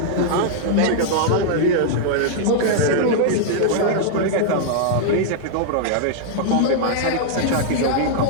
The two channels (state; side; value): different; both; correlation -0.01